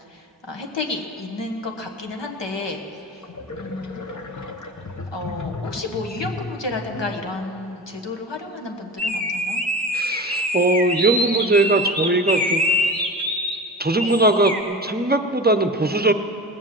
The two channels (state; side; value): normal; both; correlation 0.31